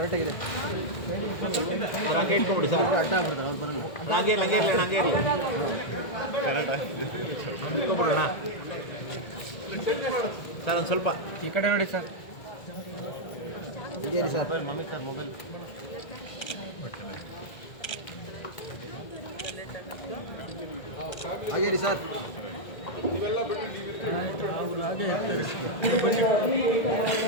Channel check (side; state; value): right; late; 1.8 ms